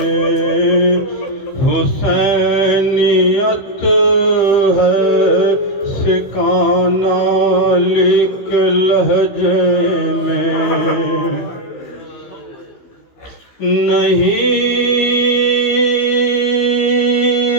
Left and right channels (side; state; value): right; late; 15 ms